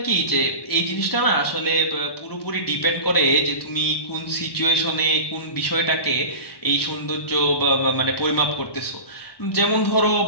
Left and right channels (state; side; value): late; right; 1.1 ms